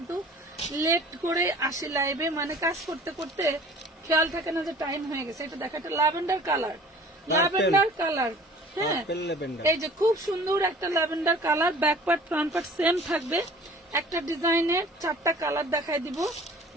লেট করে আসি লাইভে, মানে কাজ করতে করতে খেয়াল থাকে না যে টাইম হয়ে গেছে। এটা দেখো, একটা ল্যাভেন্ডার কালার, ল্যাভেন্ডার কালার। হ্যাঁ, এই যে খুব সুন্দর একটা lavender colour. Back part front part same থাকবে। একটা ডিজাইনের 4টা কালার দেখাই দিব।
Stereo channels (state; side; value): normal; both; correlation 0.47